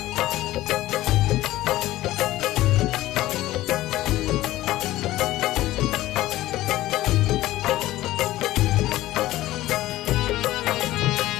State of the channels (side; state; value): right; quieter; 16.0 dB